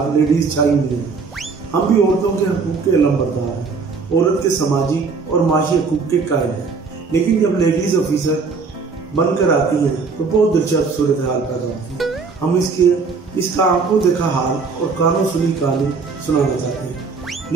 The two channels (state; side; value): quieter; left; 4.7 dB